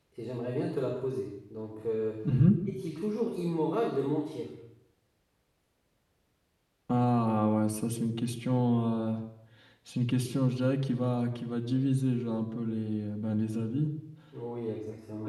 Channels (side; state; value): both; identical; correlation 1.00